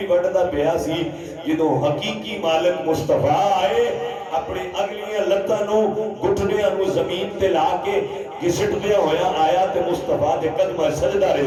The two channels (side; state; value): both; identical; correlation 1.00